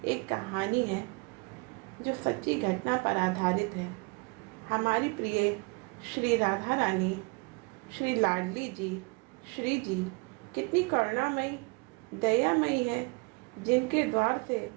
एक कहानी है जो सच्ची घटना पर आधारित है। हमारी प्रिय श्री राधा रानी, श्री लाडली जी, श्री जी कितनी करुणामयी, दयामयी है, जिनके द्वार से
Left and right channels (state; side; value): quieter; left; 30.2 dB